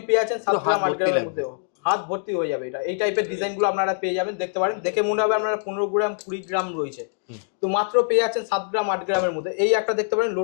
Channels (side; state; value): right; silent; digital silence